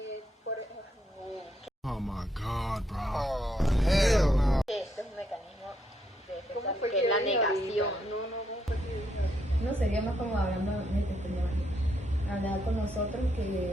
Por ejemplo, Oh my god, bro. Este es un mecanismo de defensa, ¿Cómo fue que que es la dijo negación. ahorita? ¿Cómo fue que dijo? No sería más como hablando de este tema, hablar con nosotros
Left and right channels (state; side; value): normal; both; correlation 0.76